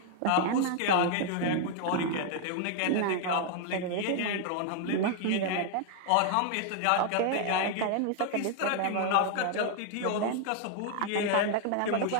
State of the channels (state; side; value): different; both; correlation 0.00